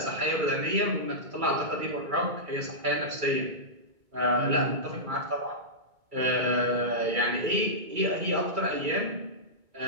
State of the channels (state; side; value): late; left; 2.2 ms